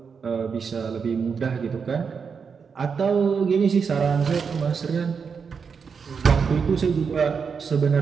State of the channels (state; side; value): quieter; left; 6.0 dB